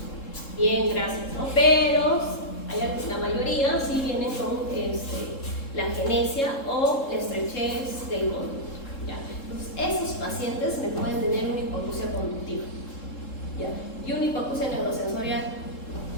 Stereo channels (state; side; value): late; right; 3.7 ms